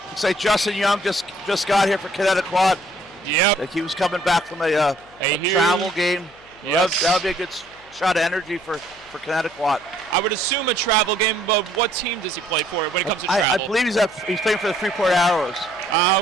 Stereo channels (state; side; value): noise; left; hum, 27 dB below the sound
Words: Looks like Justin Young just got here for Connetquot. Yep. Like he was coming back from a travel game. Yes. That would be a good shot of energy for Connetquot. I would assume a travel game, but what team does he play for when it comes to travel? I believe he's playing for the Freeport Arrows. Ah,